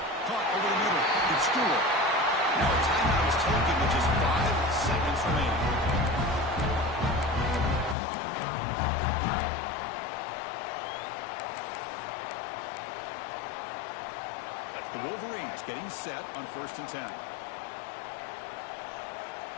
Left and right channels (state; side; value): drops out; right; at 8.0 s